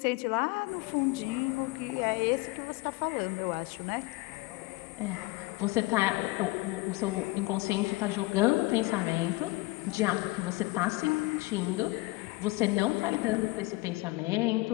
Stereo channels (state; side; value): quieter; right; 22.4 dB